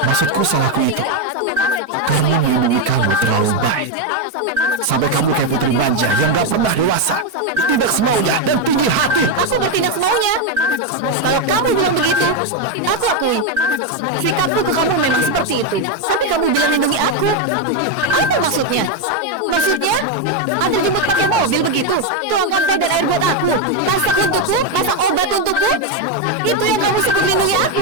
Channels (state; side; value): late; left; 4.6 ms